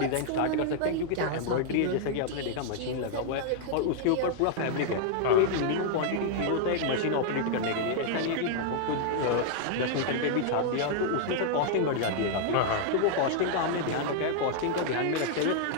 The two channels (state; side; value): different; both; correlation -0.01